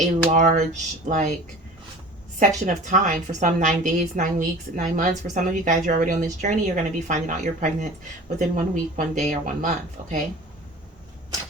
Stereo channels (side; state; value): both; normal; correlation 0.41